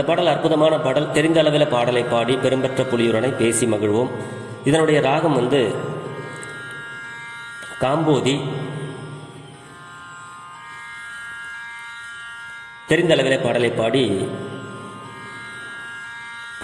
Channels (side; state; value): both; identical; correlation 1.00